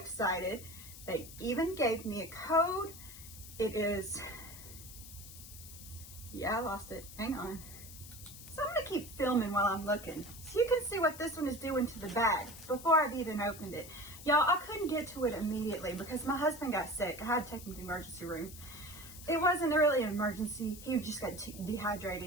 They even gave me a code. It is... Yeah, I lost it. Hang on. So I'm going to keep filming while I'm looking, so you can see what this one is doing to the bag before I've even opened it. Y'all, I couldn't get to it immediately because my husband got sick. I had to take him to the emergency room. It wasn't really an emergency. He just got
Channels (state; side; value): noise; left; hiss, 15 dB below the sound